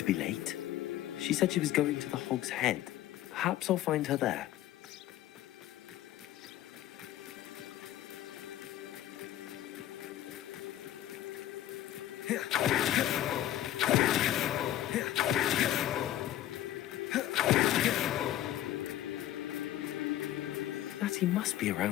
be late. She said she was going to the Hog's Head. Perhaps I'll find her there. Natty must be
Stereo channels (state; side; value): quieter; right; 13.2 dB